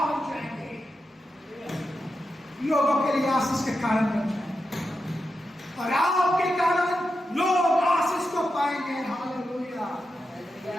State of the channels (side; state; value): both; normal; correlation 0.88